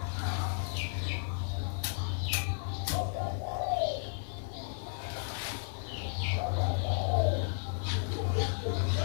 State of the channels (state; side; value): silent; right; 55 dB below the other